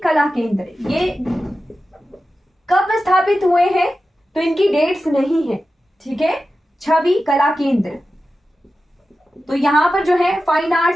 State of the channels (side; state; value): both; normal; correlation 0.93